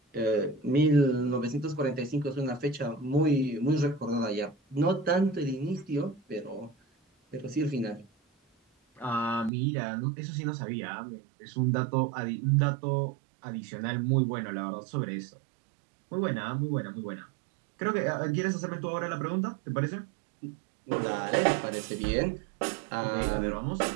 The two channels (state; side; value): drops out; left; at 9.5 s